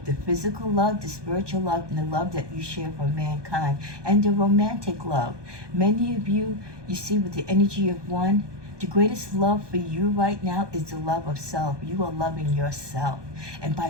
the physical love, the spiritual love, and the love that you share for mankind, and the romantic love. Many of you, you see with the energy of one, the greatest love for you right now is the love of self. You are loving yourself. And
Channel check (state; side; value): late; left; 1.2 ms